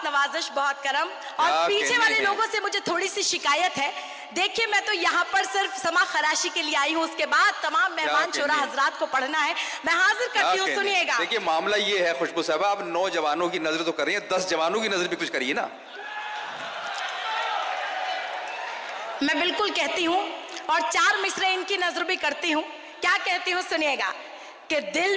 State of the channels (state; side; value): identical; both; correlation 1.00